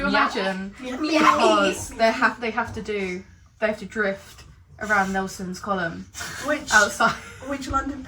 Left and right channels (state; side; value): identical; both; correlation 1.00